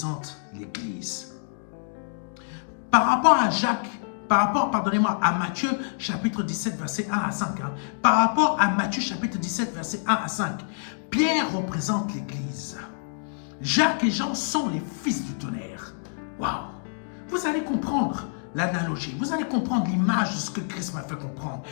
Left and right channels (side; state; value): right; silent; digital silence